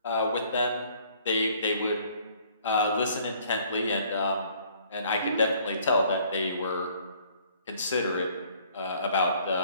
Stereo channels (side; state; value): both; inverted; correlation -0.59